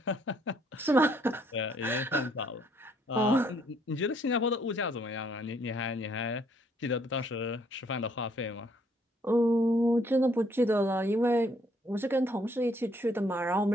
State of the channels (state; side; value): normal; both; correlation 0.66